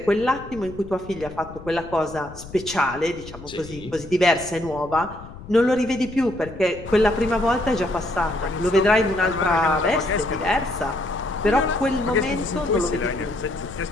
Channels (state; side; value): noise; left; rumble, 15 dB below the sound